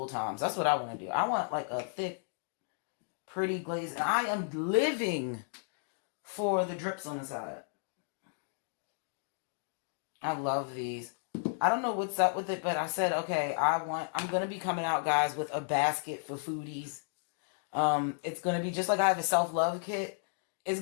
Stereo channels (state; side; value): silent; right; digital silence